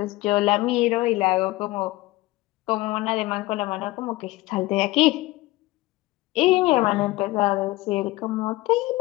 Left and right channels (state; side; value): quieter; right; 19.4 dB